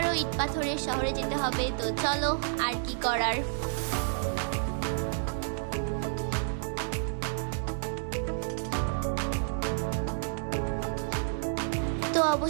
ইট পাথরের শহরে যেতে হবে, তো চলো আর কি করার। তো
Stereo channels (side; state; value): left; silent; digital silence